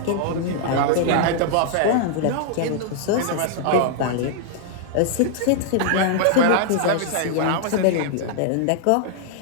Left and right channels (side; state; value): both; different; correlation -0.01